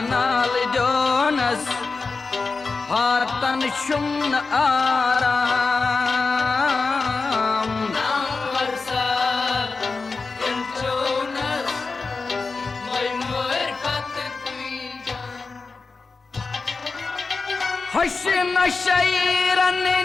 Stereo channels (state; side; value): quieter; right; 4.2 dB